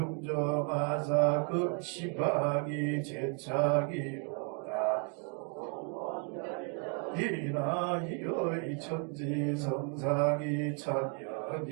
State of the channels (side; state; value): left; quieter; 38.8 dB